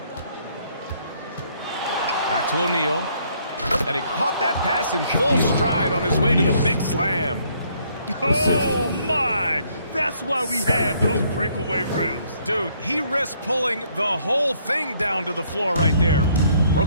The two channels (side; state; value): both; inverted; correlation -0.67